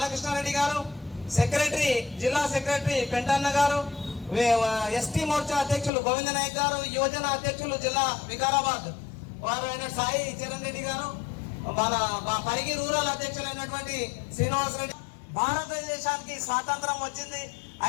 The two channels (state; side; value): drops out; right; at 5.9 s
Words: గారు, సెక్రటరీ జిల్లా సెక్రటరీ పెంటన్న గారు, ఎస్టీ మోర్చా అధ్యక్షులు గోవింద నాయక్ గారు, యువజన అధ్యక్షులు జిల్లా వికారాబాద్ వారు అయిన సాయి చరణ్ రెడ్డి గారు, మన పరిగి రూరల్ అధ్యక్షులైనటువంటి శ్రీనివాస్ రెడ్డి. భారతదేశానికి స్వాతంత్రం వచ్చింది.